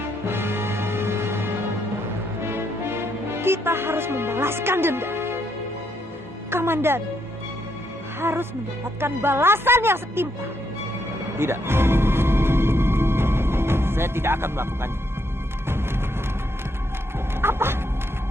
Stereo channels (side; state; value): both; normal; correlation 0.76